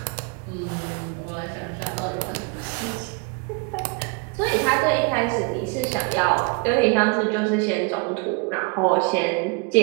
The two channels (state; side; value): quieter; left; 32.4 dB